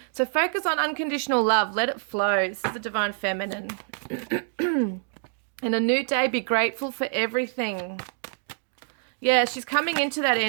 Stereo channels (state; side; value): silent; left; digital silence